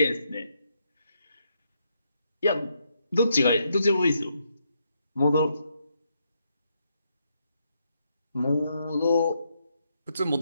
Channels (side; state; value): both; inverted; correlation -0.78